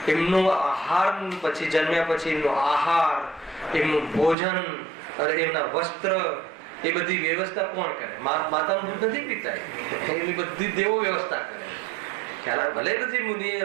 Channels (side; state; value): left; drops out; at 4.4 s